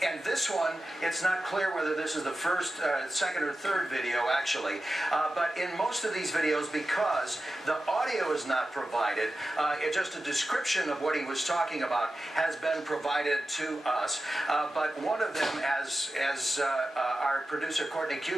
this one, it's not clear whether this is the first, second, or third video, actually. But in most of these videos, because the audio is not provided, just a description of what he was talking about has been provided to us. But one of them, as our producer, Courtney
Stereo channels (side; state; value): both; normal; correlation 0.92